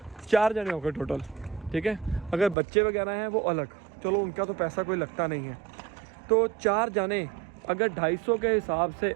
4 जने हो गए टोटल, ठीक है। अगर बच्चे वगैरह हैं वो अलग, चलो उनका तो पैसा कोई लगता नहीं है। तो 4 जाने अगर 250 के हिसाब से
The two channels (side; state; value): left; drops out; at 2.6 s